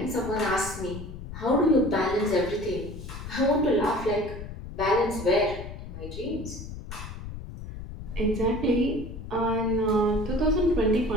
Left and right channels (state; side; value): noise; left; rumble, 10 dB below the sound